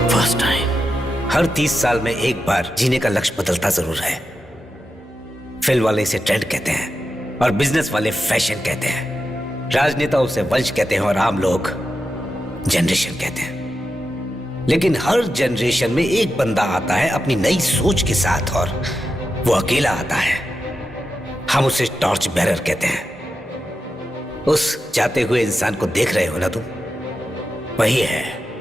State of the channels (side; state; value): both; normal; correlation 0.89